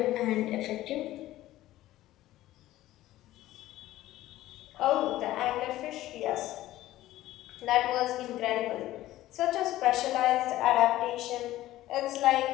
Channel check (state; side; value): quieter; right; 15.2 dB